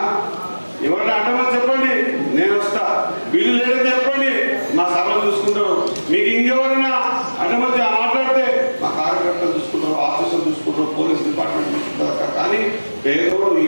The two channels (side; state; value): both; inverted; correlation -1.00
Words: ఎవరైనా అడ్డమని చెప్పండి, నేను వస్తా. బిల్లు లేదని చెప్పండి, మా సభలు చూసుకుంటారు. మీకు ఇంకెవరైనా అడ్డమని మాట్లాడితే మా కార్యకర్తలు చూసుకుంటారు, ఆఫీసులు చూసుకుంటారు, పోలీస్ డిపార్ట్మెంట్ చూసుకుంటారు. కానీ పేదోడు